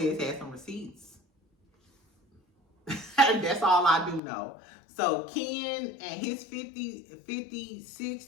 has some receipts. That's all I do know. So Ken and his 50,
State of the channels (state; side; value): drops out; right; at 4.2 s